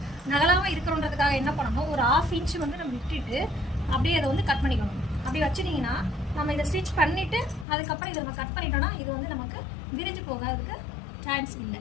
நகலாமல் இருக்கிறோன்றதுக்காக என்ன பண்ணணும், ஒரு 1/2 இன்ச்சு வந்து நம்ம விட்டுட்டு அப்படியே அதை வந்து கட் பண்ணிக்கணும். அப்படி வச்சுட்டிங்கன்னா நம்ம இதை ஸ்டிச் பண்ணிவிட்டு அதுக்கப்புறம் இதை நம்ம கட் பண்ணிட்டோம்னா இது வந்து நமக்கு விரிஞ்சு போகிறதுக்கு சான்ஸ் இல்லை.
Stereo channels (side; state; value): right; drops out; at 7.7 s